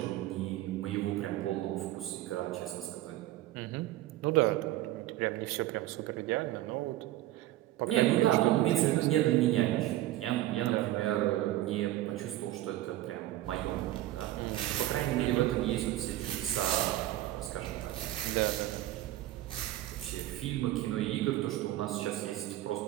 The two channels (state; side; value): quieter; left; 15.0 dB